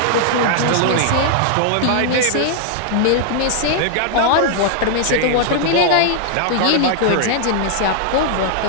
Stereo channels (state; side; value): different; both; correlation -0.01